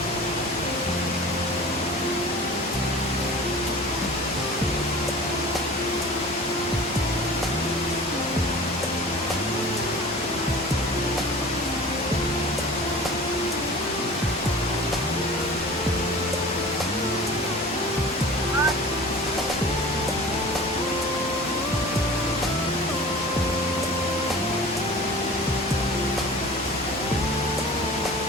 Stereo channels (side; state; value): both; normal; correlation 0.40